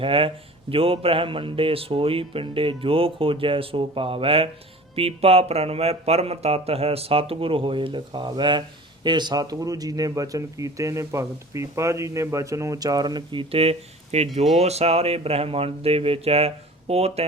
ਜੋ ਬ੍ਰਹਮੰਡੇ ਸੋਈ ਪਿੰਡੇ, ਜੋ ਖੋਜੈ ਸੋ ਪਾਵੈ। ਪੀਪਾ ਪ੍ਰਣਵੈ ਪਰਮ ਤਤ ਹੈ, ਸਤਿਗੁਰ ਹੋਏ ਲਿਖਾਵੈ। ਇਹ ਸਤਿਗੁਰੂ ਜੀ ਨੇ ਬਚਨ ਕੀਤੇ ਨੇ, ਭਗਤ ਪੀਪਾ ਜੀ ਨੇ ਬਚਨ ਉਚਾਰਨ ਕੀਤੇ ਕਿ ਜੋ ਸਾਰੇ ਬ੍ਰਹਮੰਡ ਦੇ ਵਿੱਚ ਹੈ ਉਹ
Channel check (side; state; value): both; normal; correlation 0.42